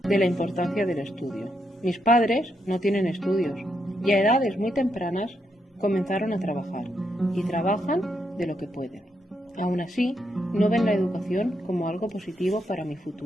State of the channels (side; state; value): both; normal; correlation 0.80